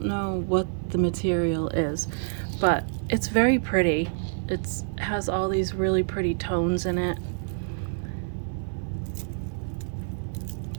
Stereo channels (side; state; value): left; silent; 56 dB below the other